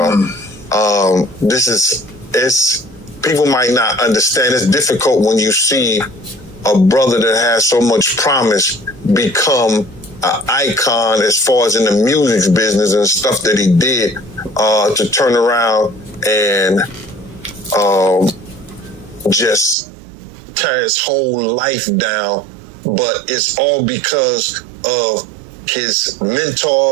People might not understand. It's difficult when you see a brother that has so much promise become an icon as far as in the music business and stuff that he did, to turn around and just tear his whole life down. But it's all because of his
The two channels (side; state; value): left; drops out; at 19.8 s